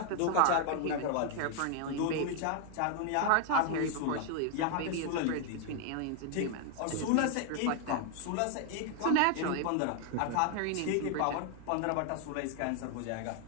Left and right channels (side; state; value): both; different; correlation 0.00